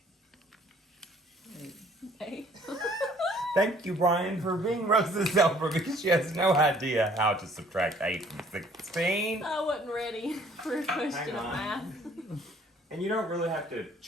8. Thank you, Brian, for being Rosa's helper because she has no idea how to subtract 8 from 16. I wasn't ready for a question of math. And you don't really have to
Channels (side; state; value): both; normal; correlation 0.58